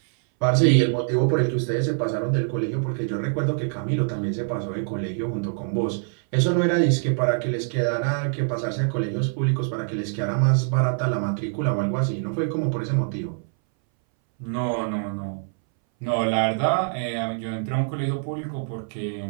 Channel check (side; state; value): left; silent; 61 dB below the other